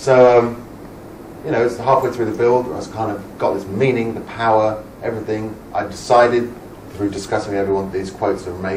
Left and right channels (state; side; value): identical; both; correlation 1.00